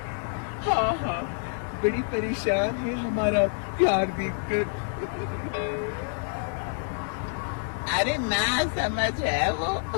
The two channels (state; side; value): silent; right; digital silence